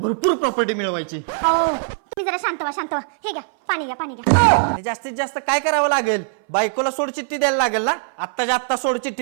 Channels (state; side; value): silent; left; 59 dB below the other